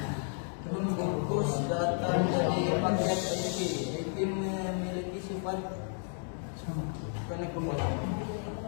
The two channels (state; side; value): silent; right; 56 dB below the other